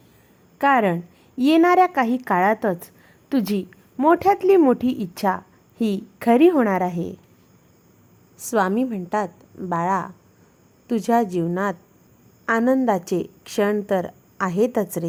कारण येणाऱ्या काही काळातच तुझी मोठ्यातली मोठी इच्छा ही खरी होणार आहे. स्वामी म्हणतात, बाळा, तुझ्या जीवनात आनंदाचे क्षण तर आहेतच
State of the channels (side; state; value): both; identical; correlation 1.00